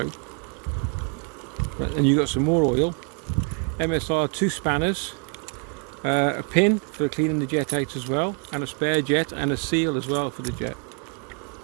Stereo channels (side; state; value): left; quieter; 38.6 dB